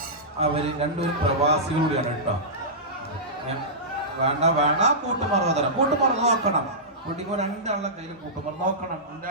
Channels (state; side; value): normal; both; correlation -0.16